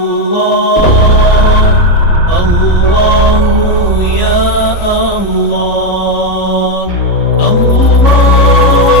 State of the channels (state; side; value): late; right; 3.6 ms